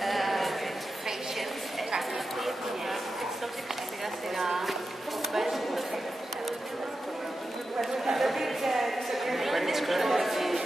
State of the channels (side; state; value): both; normal; correlation 0.91